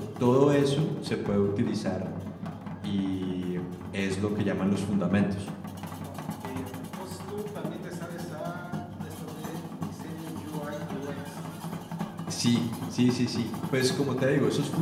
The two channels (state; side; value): identical; both; correlation 1.00